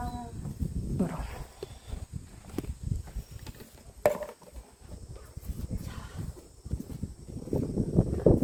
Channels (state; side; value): identical; both; correlation 1.00